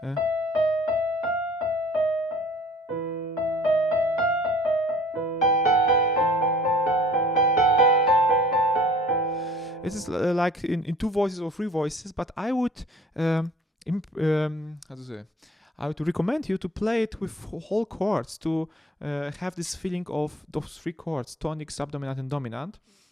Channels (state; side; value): normal; both; correlation 0.50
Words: It is like in two voices or three voices, but I would I would recommend you to play it with whole chords to have this feeling of those three chords: tonic, subdominant, and dominant.